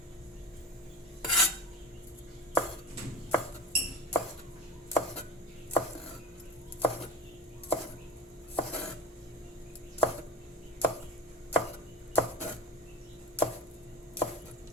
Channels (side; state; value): both; normal; correlation 0.33